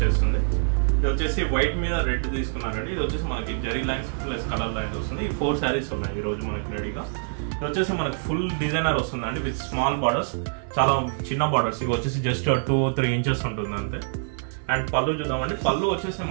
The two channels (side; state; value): left; silent; 61 dB below the other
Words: ఇది వచ్చేసి వైట్ మీద రెడ్ తీసుకున్నారండి. ఇది వచ్చేసి మనకి zari lines plus colour lines వస్తుంది. ఈ 4 శారీస్ ఉన్నాయి ఈ రోజు మనకి రెడీగా. ఇది వచ్చేసి మనకి ఫుల్ డిజైనర్ వస్తుందండి విత్ స్మాల్ బార్డర్స్, చాలా చిన్న బార్డర్స్. ఇవి వచ్చేసి జస్ట్ 2-3 ఇంచెస్ ఉంటుంది అంతే. అండ్ పళ్ళు చూద్దామండి. పళ్ళు వచ్చేసి